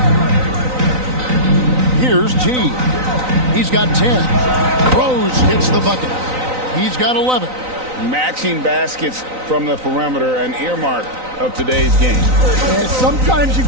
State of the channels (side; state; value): left; late; 3.9 ms